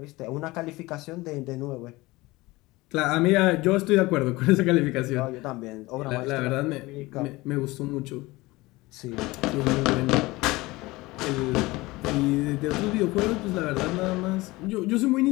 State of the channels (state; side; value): quieter; right; 20.9 dB